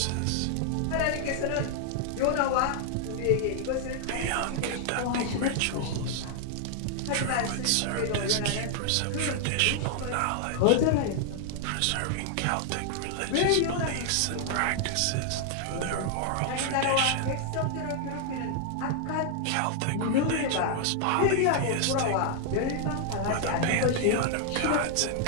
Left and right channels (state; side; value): different; both; correlation 0.00